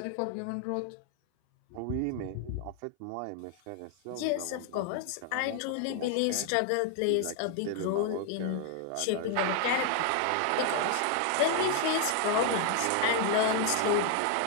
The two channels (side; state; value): both; different; correlation 0.00